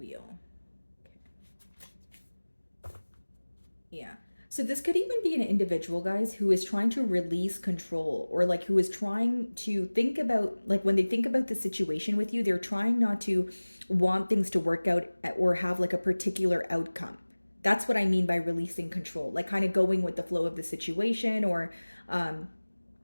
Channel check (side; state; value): both; inverted; correlation -1.00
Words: Okay. Yeah. So this could even be an individual, guys, who is trying to release control, or like who is trying to think about, like when they think about the situation with you, they're trying not to want things to work out or have like a particular outcome. That's what I mean by releasing control, like kind of going with the flow of the situation, or